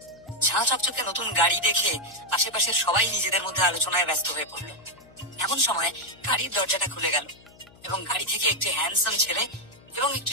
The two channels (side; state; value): left; noise; hum, 26 dB below the sound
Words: ঝাঁ চকচকে নতুন গাড়ি দেখে আশেপাশের সবাই নিজেদের মধ্যে আলোচনায় ব্যস্ত হয়ে পড়লো। এমন সময় গাড়ির দরজাটা খুলে গেল এবং গাড়ি থেকে একটি হ্যান্ডসাম ছেলে এবং